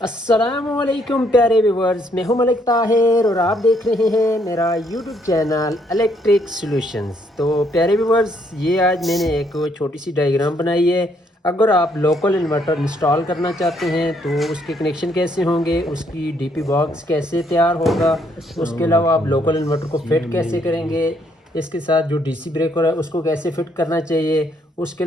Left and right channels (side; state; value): both; normal; correlation 0.70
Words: अस्सलामुअलैकुम प्यारे व्यूवर्स, मैं हूं मलिक ताहिर और आप देख रहे हैं मेरा यूट्यूब चैनल इलेक्ट्रिक सॉल्यूशंस। तो प्यारे व्यूवर्स, ये आज मैंने एक छोटी सी डायग्राम बनाई है। अगर आप लोकल इन्वर्टर इंस्टॉल करना चाहते हैं तो उसके कनेक्शन कैसे होंगे, उसकी डीपी बॉक्स कैसे तैयार होगा, उसके अलावा आप लोकल इन्वर्टर को फिट कैसे करेंगे, इसके साथ जो डीसी ब्रेकर है उसको कैसे फिट करना चाहिए, उसके